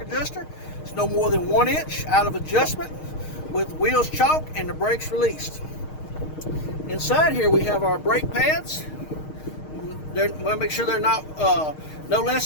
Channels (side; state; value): right; late; 6.5 ms